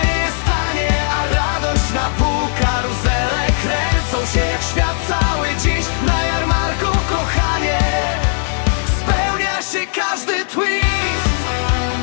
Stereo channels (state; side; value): silent; right; digital silence